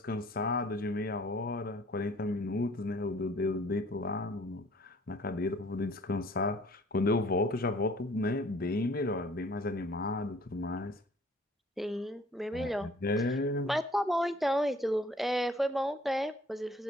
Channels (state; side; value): normal; both; correlation 0.55